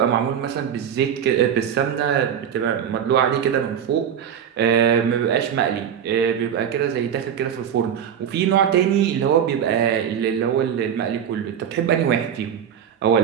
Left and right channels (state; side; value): quieter; left; 8.7 dB